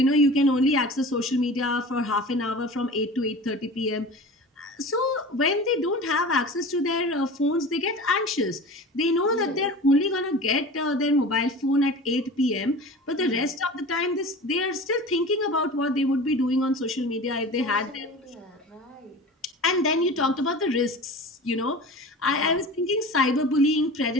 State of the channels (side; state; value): both; normal; correlation 0.36